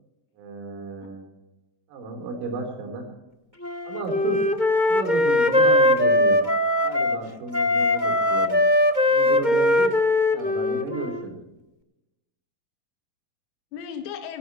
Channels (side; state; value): left; late; 2.2 ms